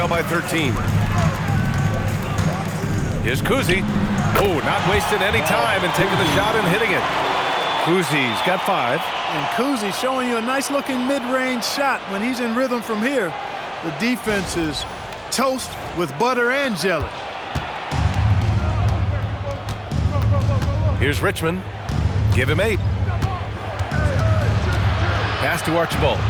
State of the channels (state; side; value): identical; both; correlation 1.00